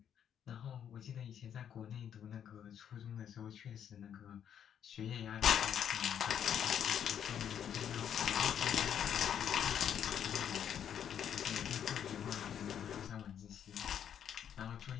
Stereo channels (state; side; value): quieter; right; 9.0 dB